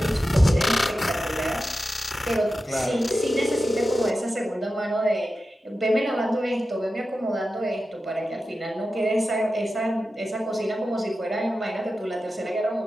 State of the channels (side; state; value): both; normal; correlation 0.92